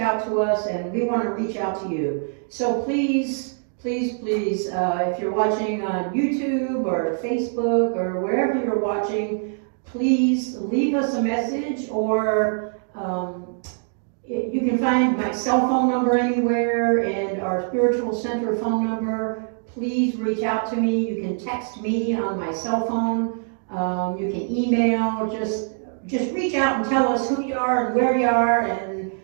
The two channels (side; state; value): left; silent; 62 dB below the other